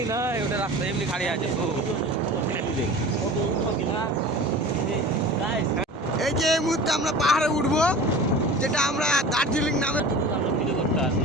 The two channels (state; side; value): normal; both; correlation 0.38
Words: নয়, ওটা রাস্তা এমনি খালি আছে। এই যে এই মুহূর্তে আমরা পাহাড়ে উঠবো, যেটা আমরা দার্জিলিং নামে ভিডিও করতে আসি।